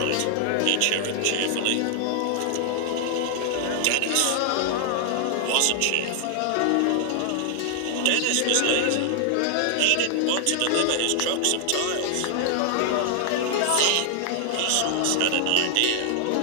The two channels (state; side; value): different; both; correlation 0.00